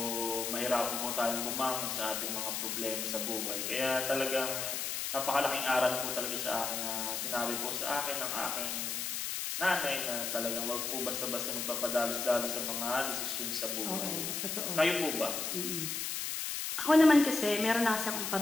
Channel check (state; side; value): noise; left; hiss, 2 dB below the sound